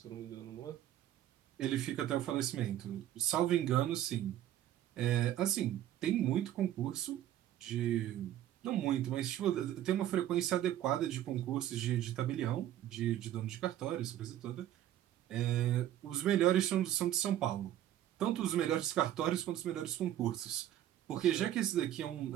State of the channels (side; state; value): left; quieter; 12.2 dB